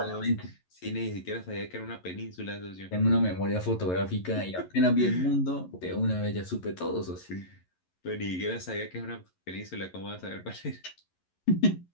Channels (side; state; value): right; late; 11 ms